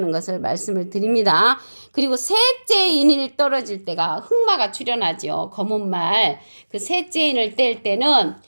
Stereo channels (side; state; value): both; inverted; correlation -1.00